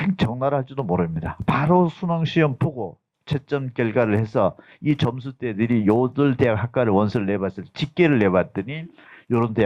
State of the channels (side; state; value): both; identical; correlation 1.00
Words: 적나라할지도 모릅니다. 바로 수능 시험 보고 채점 결과를 해서 이 점수대들이 요들 대학 학과를 원서를 내봤을 때 집계를 내봤더니 요런